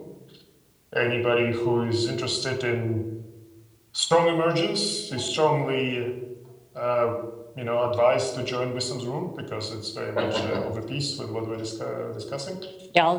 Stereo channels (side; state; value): both; identical; correlation 1.00